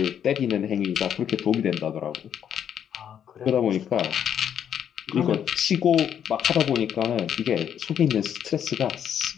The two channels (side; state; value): right; quieter; 9.0 dB